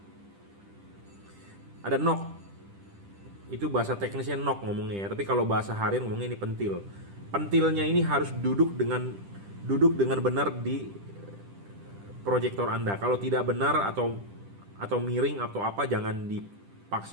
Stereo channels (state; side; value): late; left; 10 ms